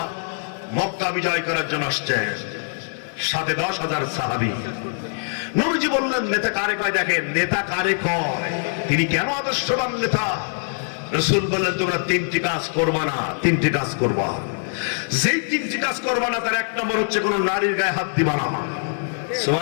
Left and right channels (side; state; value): right; silent; 59 dB below the other